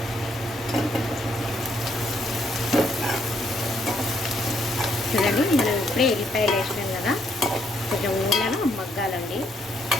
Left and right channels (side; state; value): both; normal; correlation 0.72